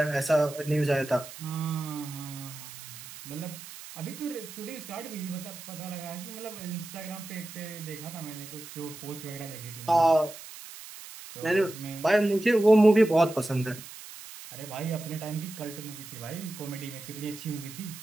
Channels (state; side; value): noise; right; hiss, 14 dB below the sound